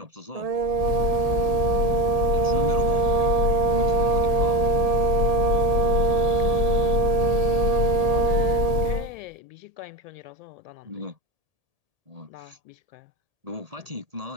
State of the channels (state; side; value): late; left; 1.7 ms